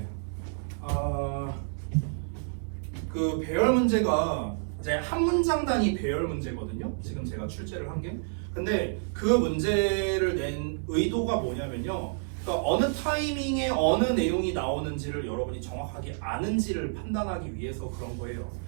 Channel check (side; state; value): left; silent; digital silence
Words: 그 배열 문제가 이제 한 문장 단위 배열 문제거든요. 지금 제가 출제를 한 게. 근데 그 문제를 낸 의도가 뭐냐면요. 그러니까 어느 타이밍에 어느 내용이 나오는지를 여러분이 정확하게 아는지를 판단하기 위해서 그런 거예요.